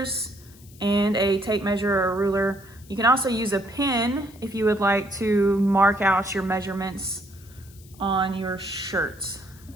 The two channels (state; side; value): noise; left; hiss, 24 dB below the sound